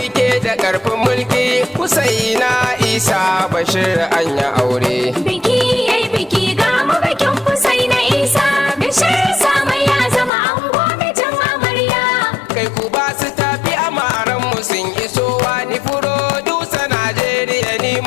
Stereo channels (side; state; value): right; drops out; at 10.3 s